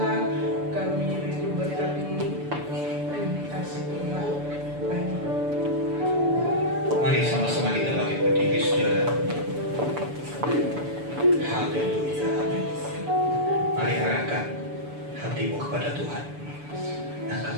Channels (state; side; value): late; left; 6.9 ms